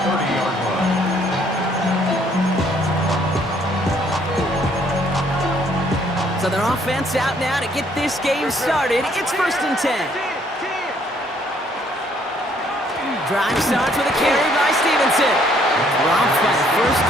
30-yard line. So their offense out now to get this game started. It's first and 10. Drive starts with a carry by Stevenson. Dropped by the first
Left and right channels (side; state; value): both; normal; correlation 0.65